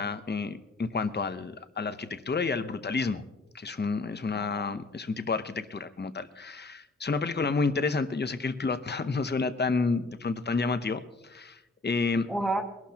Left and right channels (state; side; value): quieter; right; 3.5 dB